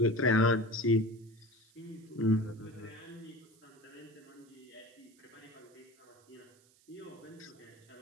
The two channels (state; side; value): noise; right; hiss, 29 dB below the sound